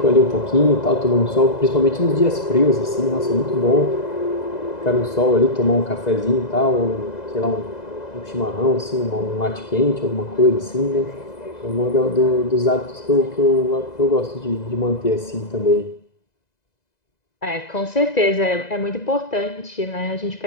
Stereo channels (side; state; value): right; late; 2.0 ms